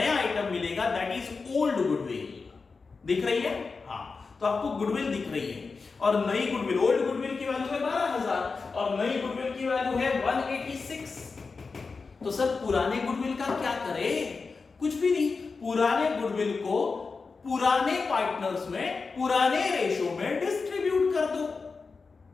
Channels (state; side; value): quieter; right; 4.5 dB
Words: आइटम मिलेगा, दैट इज ओल्ड गुडविल। दिख रही है? हाँ, तो आपको गुडविल दिख रही है, और नई गुडविल, ओल्ड गुडविल की की वैल्यू है 12,000 और नई गुडविल की वैल्यू है 186। तो सर पुराने गुडविल का क्या करें? कुछ भी नहीं, पुराने गुडविल को पुराने पार्टनर्स में पुराने रेशो में डिस्ट्रीब्यूट कर दो।